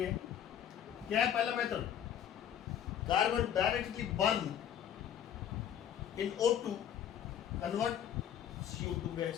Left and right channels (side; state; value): right; quieter; 9.6 dB